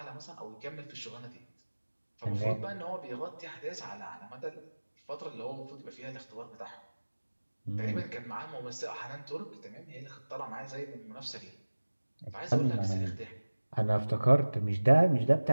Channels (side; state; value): both; inverted; correlation -1.00